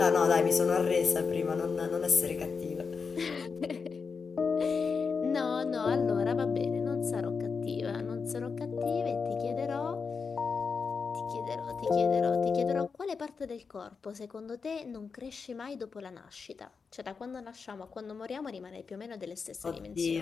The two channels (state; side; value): quieter; right; 5.3 dB